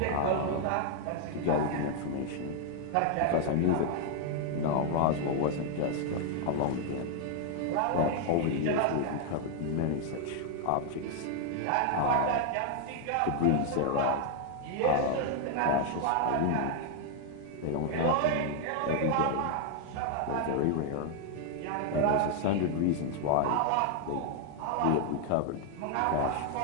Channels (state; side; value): different; both; correlation 0.00